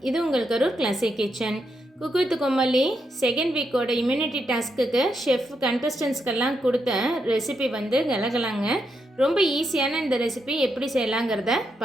இது உங்கள் Karur classic kitchen. Cook with Comali second வீக்கோட இம்யூனிட்டி டாஸ்க்குக்கு ஷெஃப் கண்டஸ்டன்ஸ்க்கெல்லாம் கொடுத்த ரெசிபி வந்து கலகலாங்க. ரொம்ப ஈஸியான இந்த ரெசிபி எப்படி செய்யலாங்கிறத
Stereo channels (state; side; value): normal; both; correlation 0.82